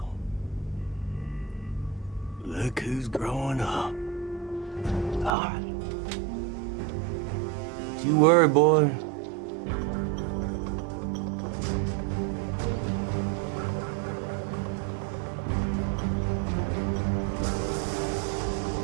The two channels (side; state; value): left; drops out; at 5.3 s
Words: look who's growing up. All right. Don't you worry, boy.